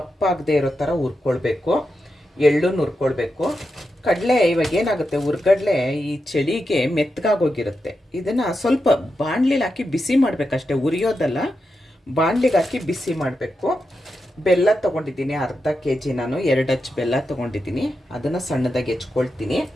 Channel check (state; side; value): normal; both; correlation 0.88